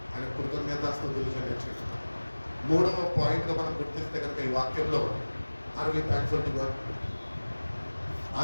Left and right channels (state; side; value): inverted; both; correlation -1.00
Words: ఆయన కృతజ్ఞతాస్తుతులు చెల్లించాడు. మూడవ పాయింట్గా మనం గుర్తిస్తే కనుక ఈ వాక్యంలో are we thankful to God,